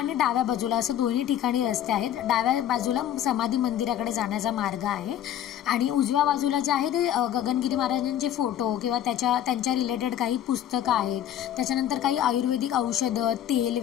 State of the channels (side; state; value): right; quieter; 11.0 dB